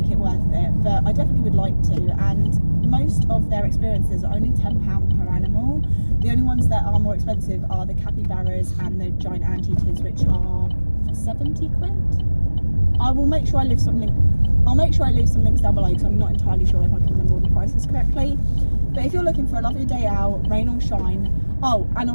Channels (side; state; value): both; inverted; correlation -1.00